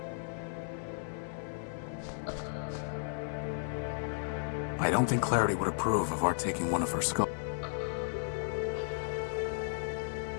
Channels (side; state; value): right; silent; 55 dB below the other